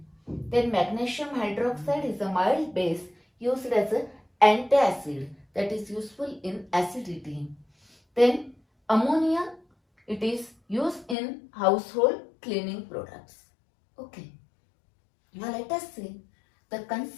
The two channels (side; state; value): right; drops out; at 11.2 s